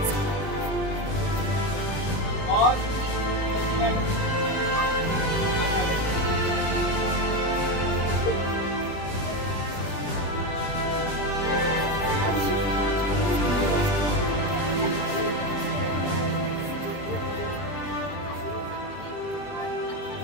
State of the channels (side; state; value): right; late; 20 ms